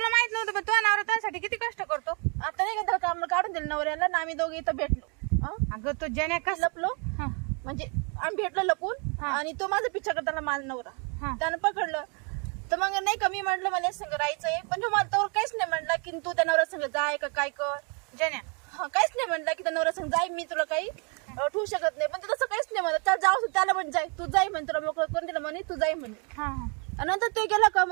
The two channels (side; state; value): left; quieter; 35.6 dB